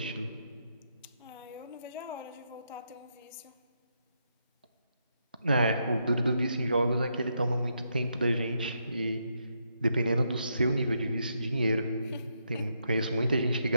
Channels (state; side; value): inverted; both; correlation -0.79